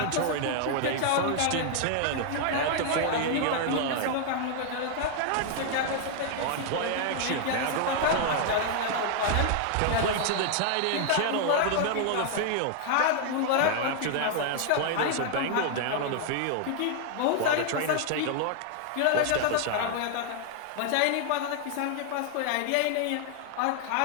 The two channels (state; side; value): different; both; correlation 0.00